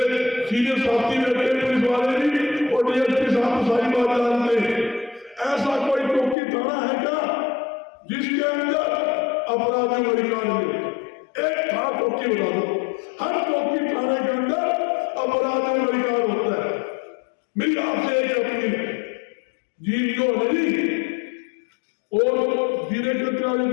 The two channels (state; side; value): drops out; right; at 6.4 s